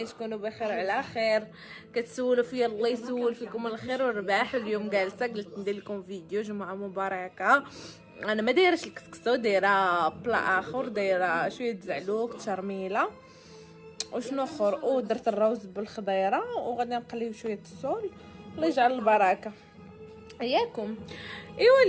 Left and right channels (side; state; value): both; identical; correlation 1.00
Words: تكونوا بخير على خير. كتسولوا فيا، الله يسول فيكم الخير والرباح. اليوم جالسه قلت ندير لكم فيديو جمعه مباركه. انا ما دايرش الكسكسو، دايره بلا اخر، دايره شويه زعلوك تشرميله وشنو اخر، ودرت الروز بالخضيره وغادي نقليو شويه السول. الله يجعل البركه اياكم. ايوا